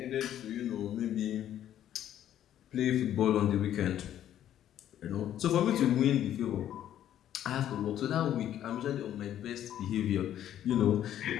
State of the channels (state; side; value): quieter; right; 11.2 dB